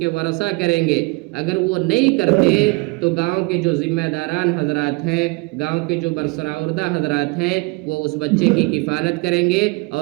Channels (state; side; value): quieter; left; 27.4 dB